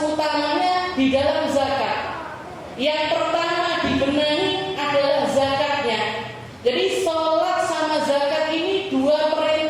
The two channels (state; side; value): identical; both; correlation 1.00